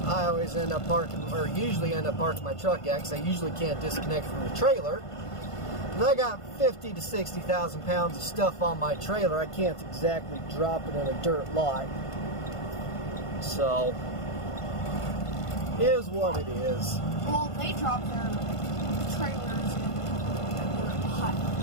I always end up parking, or usually end up parking my truck at, because I usually can't disconnect from the trailer. And I got 50 to 60,000 pounds of stuff on my trailer. I can't exactly drop it in a dirt lot. So, is what it is. Well, they drop their trailers in their hut.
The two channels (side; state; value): right; late; 1.5 ms